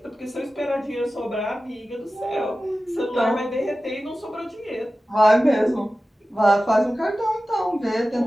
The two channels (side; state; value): both; normal; correlation 0.95